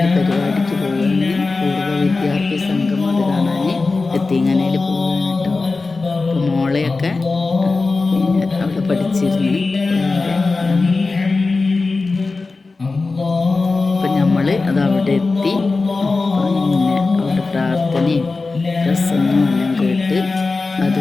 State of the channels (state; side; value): quieter; right; 3.8 dB